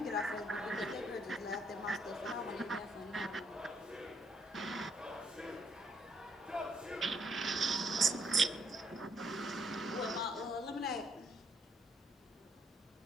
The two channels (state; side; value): normal; both; correlation 0.71